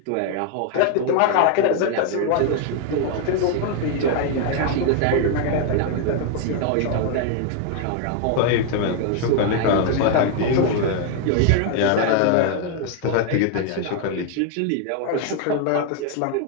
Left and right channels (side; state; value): both; different; correlation 0.00